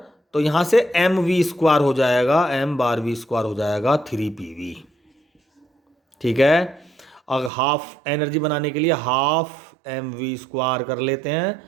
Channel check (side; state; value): left; drops out; at 7.5 s